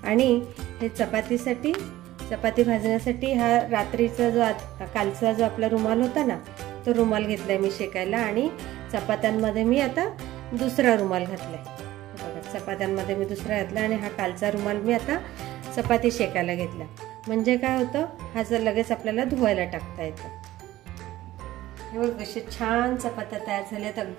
आणि हे चपाती भाजण्यासाठी हा रात्रीचा कालचा जो आपला रुमाल होता ना, तो रुमाल घेतलाय मी शेकायला, आणि चपात्यांमध्ये मी आता दुसरा रुमाल घातलाय। बघा चपात्यांमध्ये मी दुसरा घातला, आणि हा कालचा रुमाल मी आता चपाती शेकायला घेतला। म्हणजे काय होतं, हा जर लगेच आपल्याला धुवायला टाकता येतं। हे बघ कशी छान चपात्या तयार झाल्यात,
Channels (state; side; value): quieter; left; 15.5 dB